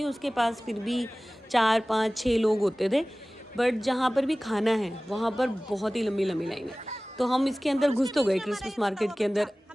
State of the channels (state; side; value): normal; both; correlation 0.98